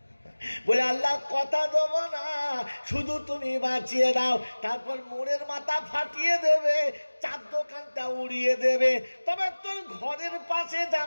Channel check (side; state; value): both; inverted; correlation -1.00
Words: বলে আল্লাহ কথা দেবো না, শুধু তুমি বাঁচিয়ে দাও। তারপর মোড়ের মাথা ফাটিয়ে দেবে, চার দোকানটা উড়িয়ে দেবে, তবে তোর ঘরের পাশে